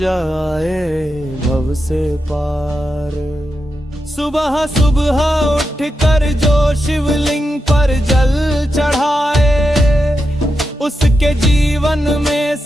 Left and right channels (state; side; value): normal; both; correlation 0.87